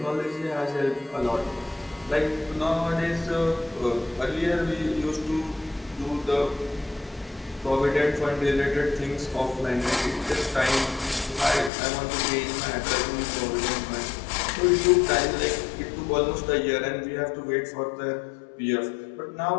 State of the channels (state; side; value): drops out; right; at 11.7 s